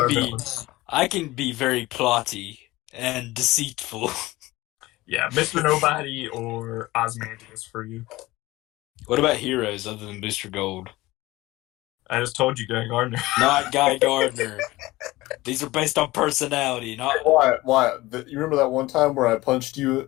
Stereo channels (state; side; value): quieter; right; 19.1 dB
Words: be. villains. I can be very plotty and deceitful. Yeah, Mr. Nobody or Ozymandias for you. What about heroes other than Booster Gold? I just told you, Guy Gardner. Not Guy Gardner. These are based on personality, not. Why? You remember that one time where I punched